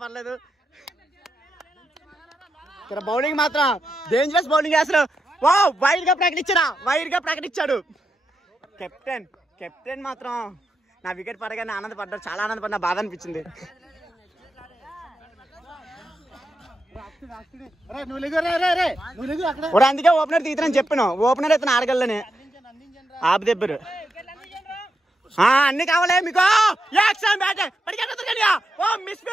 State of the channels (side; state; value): both; normal; correlation 0.86